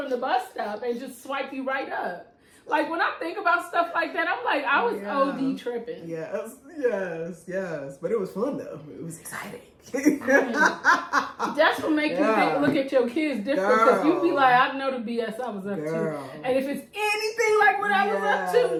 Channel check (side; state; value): both; identical; correlation 1.00